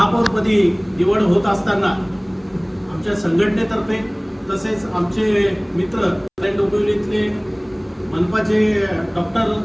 निवड होत असताना आमच्या संघटनेतर्फे तसेच आमचे मित्र कल्याण डोंबिवलीतले मनपाचे डॉक्टर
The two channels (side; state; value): both; identical; correlation 1.00